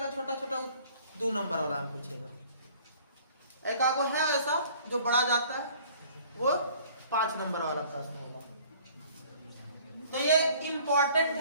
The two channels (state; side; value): inverted; both; correlation -0.53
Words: छोटा छोटा 2 नंबर वाला में पूछेगा। एक आगो है ऐसा जो बड़ा जाता है वो 5 नंबर वाला प्रश्न होगा। तो ये इंपॉर्टेंट